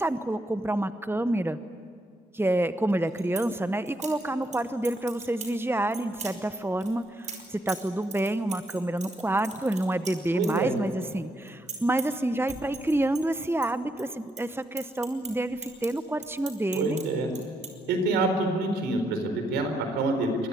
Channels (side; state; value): both; normal; correlation 0.77